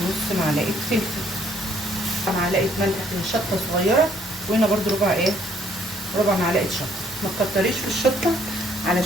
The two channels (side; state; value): both; normal; correlation 0.64